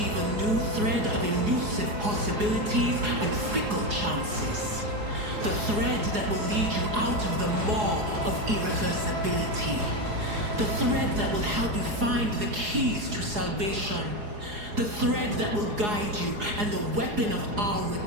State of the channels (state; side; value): late; left; 4.8 ms